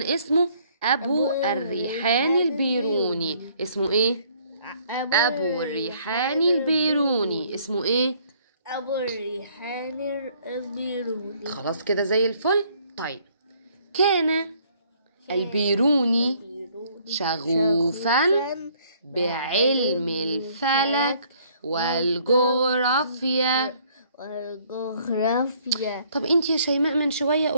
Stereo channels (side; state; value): both; inverted; correlation -0.62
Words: اسمه أبو الريحان البيروني. اسمه ايه؟ أبو الريحان البيروني. اسمه ايه؟ أبو الريحان البيروني. خلاص كده زي الفل. طيب كان البيروني شغوفا بعلم الفلك والجغرافيا. طب انت يا شيماء من شوية